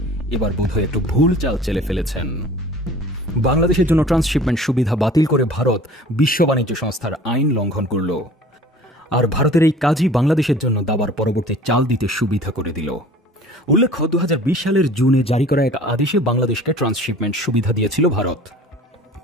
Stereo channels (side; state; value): both; normal; correlation 0.47